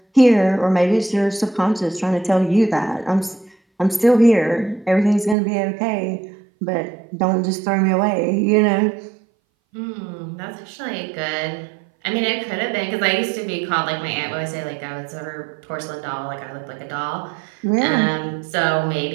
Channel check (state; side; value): drops out; left; at 5.4 s